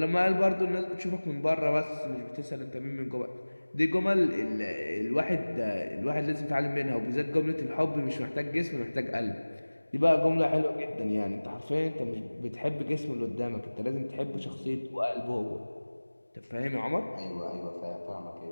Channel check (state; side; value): inverted; both; correlation -1.00